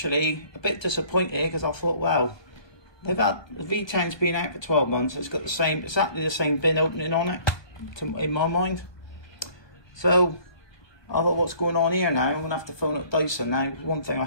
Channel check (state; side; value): late; right; 1.4 ms